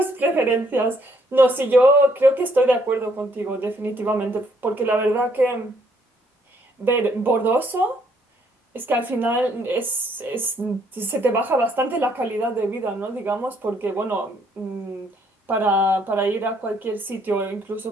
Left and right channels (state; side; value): normal; both; correlation 0.68